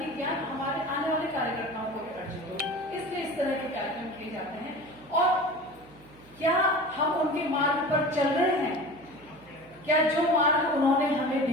ज्ञान हमारे आने वाले कार्यकर्ताओं को भी अर्जित हो। इसलिए इस तरह के कार्यक्रम किए जाते हैं। और क्या हम उनके मार्ग पर चल रहे हैं? क्या जो मार्ग उन्होंने हमें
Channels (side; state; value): right; noise; hum, 25 dB below the sound